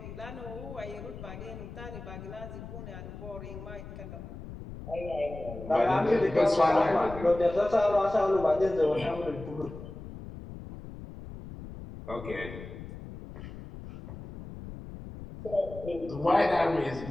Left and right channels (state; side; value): noise; left; rumble, 12 dB below the sound